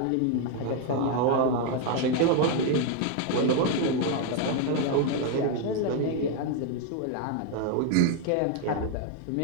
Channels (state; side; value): different; both; correlation 0.01